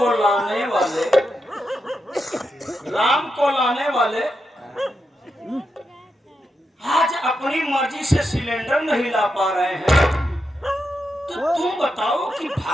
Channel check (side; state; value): both; normal; correlation 0.86